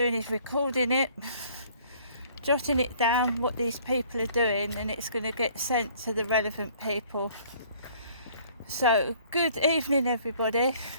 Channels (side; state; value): both; inverted; correlation -0.57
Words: is recording it, jotting it down what these people are doing, and it's going to get sent to the relevant people. So good evening everybody.